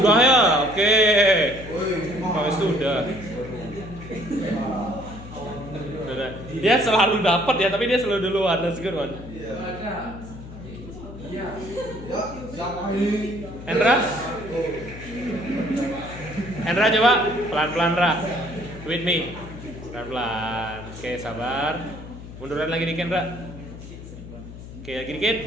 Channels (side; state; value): left; noise; hum, 14 dB below the sound